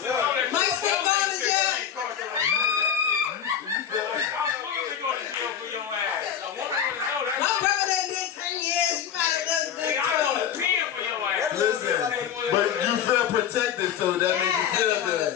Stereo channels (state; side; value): quieter; right; 9.0 dB